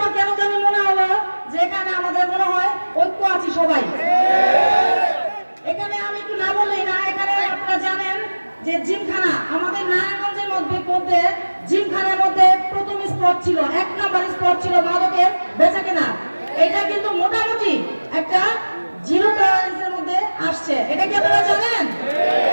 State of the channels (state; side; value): inverted; both; correlation -1.00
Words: কেন জানি মনে হলো যে এখানে আমাদের মনে হয় ঐক্য আছে সবাই। এখানে আমি একটু না বললেই না, এখানে আপনারা জানেন যে জিমখানা আমাদের নারায়ণগঞ্জের মধ্যে জিমখানার মধ্যে প্রথম স্পট ছিল, 1 নম্বর স্পট ছিল মাদকের বেচাকেনা। এটা কিন্তু মোটামুটি একটা জিরো টলারেন্সের মধ্যে আসছে। এটা কি আপনারা জানেন?